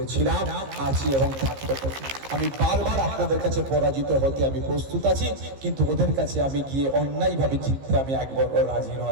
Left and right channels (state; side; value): late; left; 15 ms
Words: আছি এবং থাকতে পারি। আমি বারবার আপনাদের কাছে পরাজিত হতে আমি প্রস্তুত আছি, কিন্তু ওদের কাছে আমি গিয়ে অন্যায়ভাবে জিততে আমি একবার রাজি